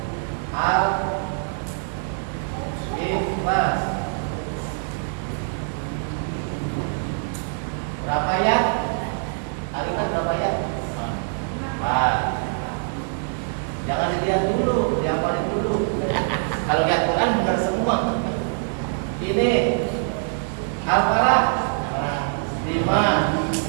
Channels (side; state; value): left; silent; 58 dB below the other